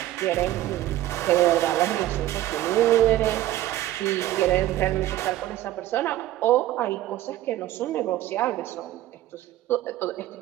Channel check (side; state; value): left; quieter; 14.6 dB